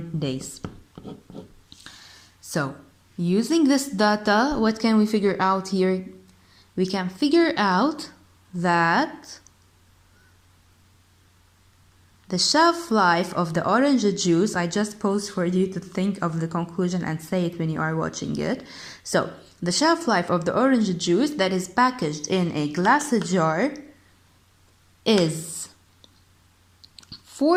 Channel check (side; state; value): both; identical; correlation 1.00